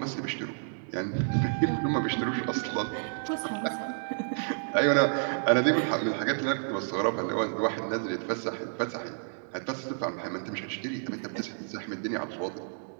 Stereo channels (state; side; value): silent; left; digital silence